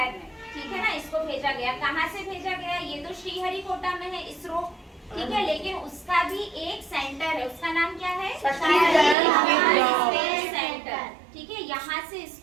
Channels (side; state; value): left; drops out; at 9.2 s